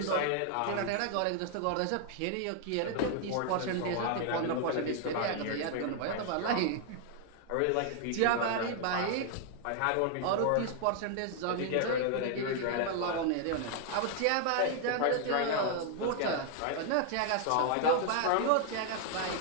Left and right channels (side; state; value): both; different; correlation 0.00